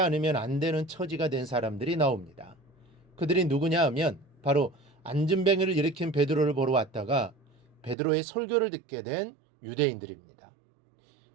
안 되는 처지가 된 사람들이 나옵니다. 그들이 누구냐 하면 바로 안진뱅이를 일으킨 베드로를 보러 왔다가 베드로의 설교를 듣게 된 유대인들입니다.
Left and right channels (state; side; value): drops out; left; at 8.0 s